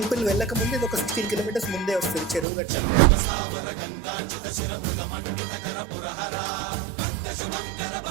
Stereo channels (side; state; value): left; drops out; at 2.5 s